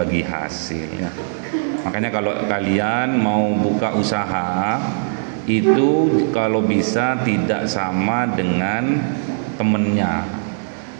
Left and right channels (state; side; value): silent; left; digital silence